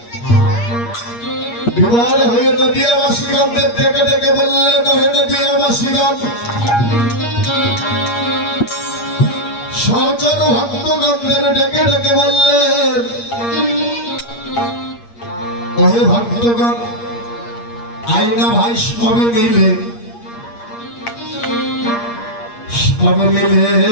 বিবাহ হয়ে নদিয়াবাসীগণদের ডেকে ডেকে বললেন, হে নদিয়াবাসীগণ, সহচর ভক্তগণদের ডেকে ডেকে বললেন, ওহে ভক্তগণ, আইনা ভাই সবে মিলে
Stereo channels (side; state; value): right; late; 8.5 ms